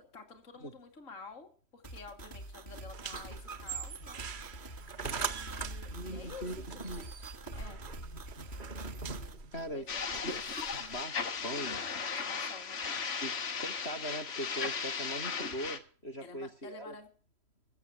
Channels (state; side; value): late; right; 3.1 ms